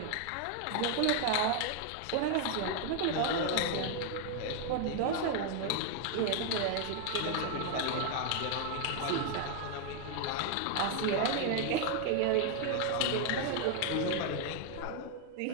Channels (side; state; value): both; different; correlation 0.00